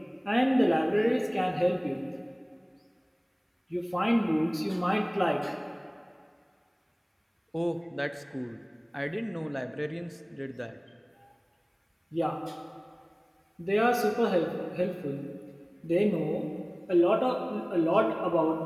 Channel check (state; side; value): identical; both; correlation 1.00